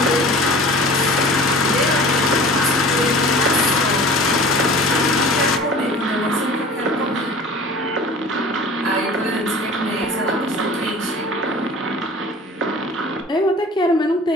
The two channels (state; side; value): normal; both; correlation 0.42